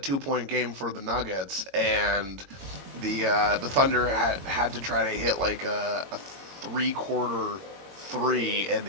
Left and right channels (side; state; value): left; late; 22 ms